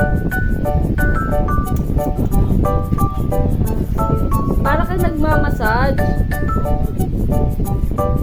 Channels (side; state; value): both; identical; correlation 1.00